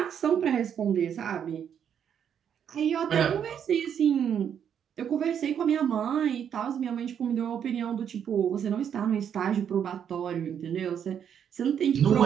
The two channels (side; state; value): left; quieter; 8.4 dB